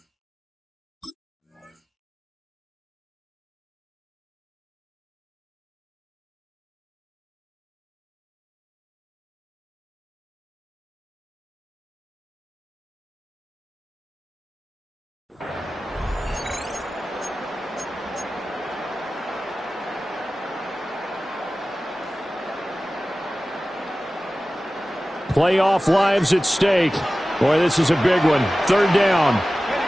Playoff lives at stake. Boy, this is a big one. Third down.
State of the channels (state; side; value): normal; both; correlation 0.96